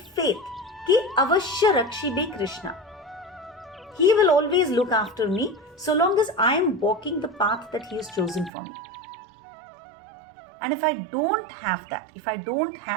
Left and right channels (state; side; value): drops out; left; at 8.5 s